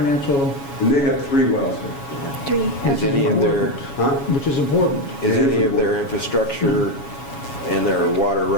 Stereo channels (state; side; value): late; right; 7.2 ms